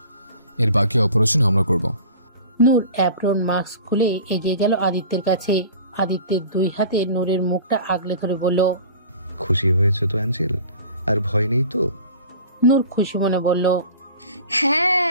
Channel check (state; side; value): inverted; both; correlation -0.43